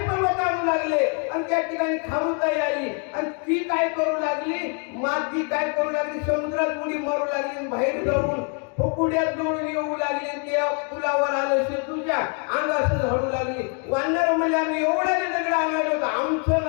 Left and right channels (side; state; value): right; quieter; 39.2 dB